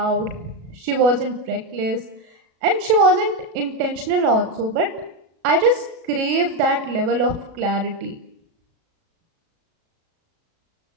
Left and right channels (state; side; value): late; left; 36 ms